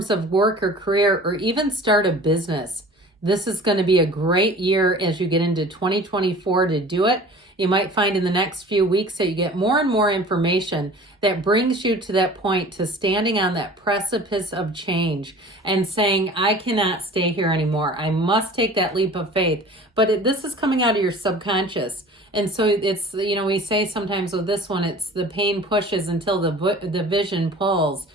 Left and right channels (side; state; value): both; normal; correlation 0.43